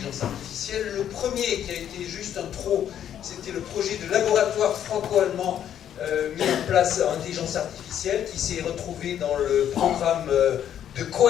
artificielle. Le premier, qui a été juste un trop, c'était le projet de laboratoire franco-allemand mis en place en intelligence artificielle, qui s'est retrouvé dans le programme de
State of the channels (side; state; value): right; quieter; 10.1 dB